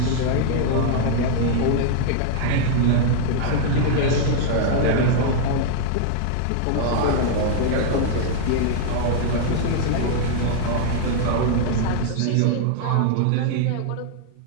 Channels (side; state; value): both; different; correlation -0.01